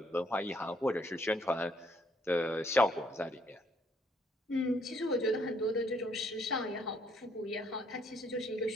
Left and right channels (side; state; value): both; normal; correlation 0.68